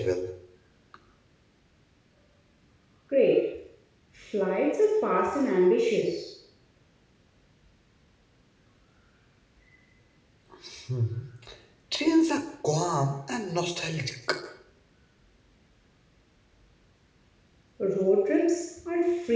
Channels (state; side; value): identical; both; correlation 1.00